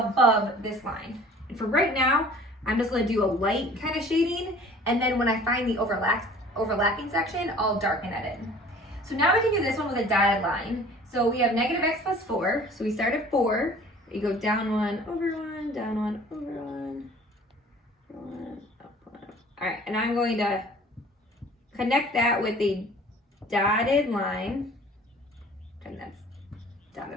this line. And for right now, I'm just going to do a light kind of shading, and then when I find the overlapping section, I'll darken that in. So now we can do this one with a dotted line. So we have negative x plus 4, so we start at 4, you go down 1, over 1, down 1, over 1, 1, up, 1, up. All right, and I'm going to connect that with a dotted line, and that's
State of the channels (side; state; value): both; normal; correlation 0.48